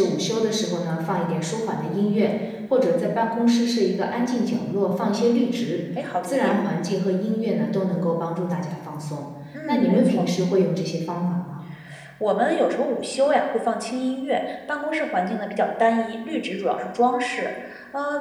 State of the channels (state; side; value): identical; both; correlation 1.00